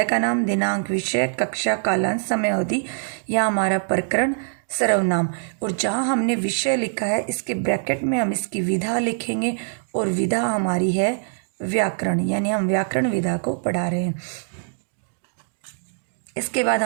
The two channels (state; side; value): silent; left; digital silence